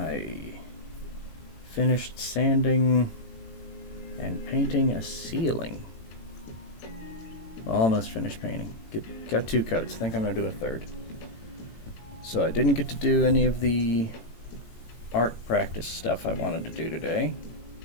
finished sanding and painting a ceiling. Well, almost finished painting. Got 2 coats. I think I'm going to do a third. So I didn't get to do any of the art practice stuff I wanted to do today.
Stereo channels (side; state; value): right; late; 18 ms